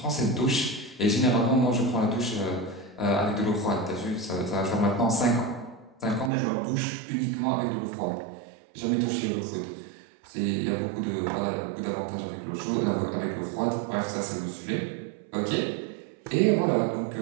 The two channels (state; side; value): drops out; left; at 6.3 s